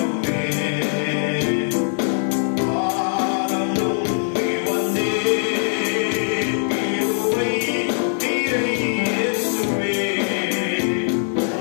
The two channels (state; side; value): silent; right; digital silence